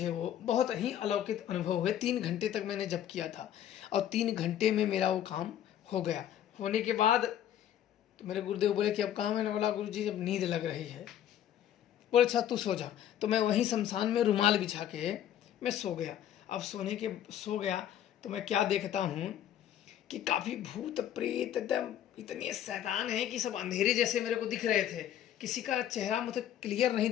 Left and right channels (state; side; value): quieter; right; 10.9 dB